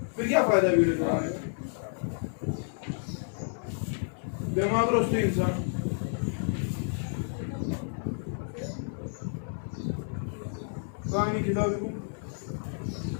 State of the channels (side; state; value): right; silent; 58 dB below the other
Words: फिर क्या फायदा वीडियो चढ़ाने का? दिमाग रोस्ते इंसान कहानी किताब को